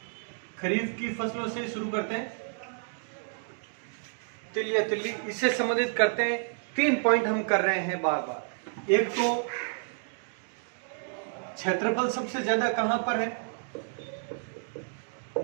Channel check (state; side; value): silent; left; 57 dB below the other